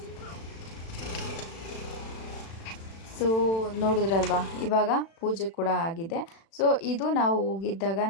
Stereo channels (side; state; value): right; late; 36 ms